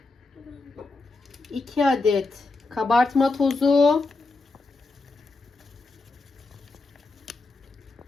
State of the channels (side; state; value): right; quieter; 3.5 dB